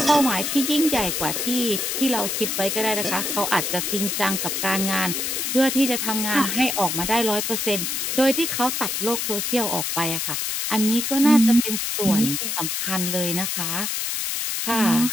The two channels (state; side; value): noise; left; hiss, 1 dB below the sound